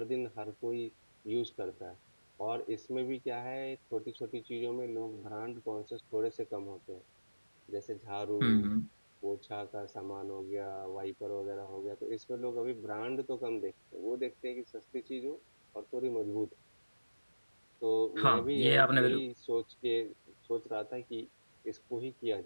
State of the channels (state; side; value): inverted; both; correlation -1.00